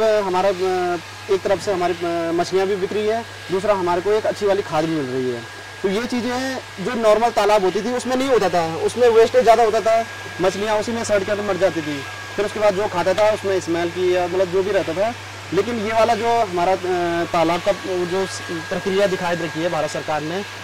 हमारा एक तरफ से हमारी मछलियाँ भी बिक रही है, दूसरा हमारे को एक अच्छी वाली खाद भी मिल रही है। तो ये चीज़ें जो नॉर्मल तालाब होती थी उसमें नहीं होता था, उसमें वेस्टेज ज़्यादा होता था, मछलियाँ उसी में सड़ कर मर जाती थी। फिर उसके बाद जो खाता था उसमें स्मेल की या मतलब जो भी रहता था। लेकिन ये वाला जो हमारा तालाब का जो प्रक्रिया दिखाई रखी है भारत सरकार ने,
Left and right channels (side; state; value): both; identical; correlation 1.00